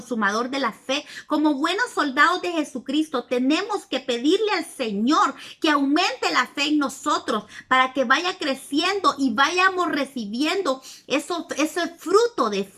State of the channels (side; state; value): both; identical; correlation 1.00